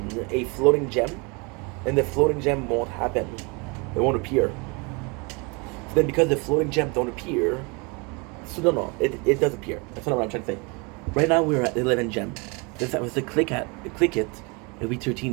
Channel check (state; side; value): quieter; left; 30.1 dB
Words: floating gem, and the floating gem won't happen. It won't appear. So then because the floating gems don't appear, so it does appear. That's what I'm trying to say. Right now we're at 11 gem. If I was to click it, it'll be